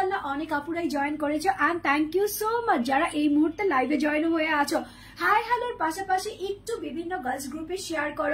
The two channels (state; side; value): identical; both; correlation 1.00